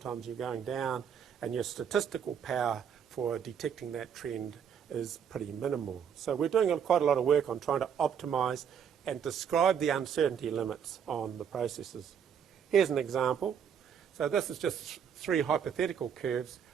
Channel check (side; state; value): left; quieter; 7.8 dB